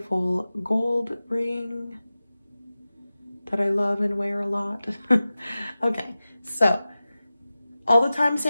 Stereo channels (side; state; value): both; inverted; correlation -0.96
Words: gold ring that I love and wear a lot. Okay, so all the